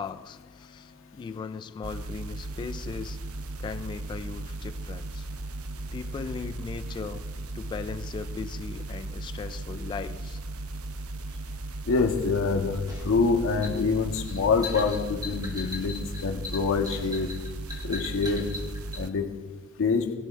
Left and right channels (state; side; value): quieter; right; 3.2 dB